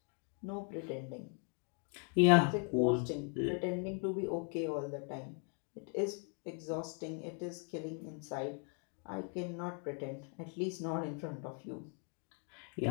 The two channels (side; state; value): right; quieter; 38.0 dB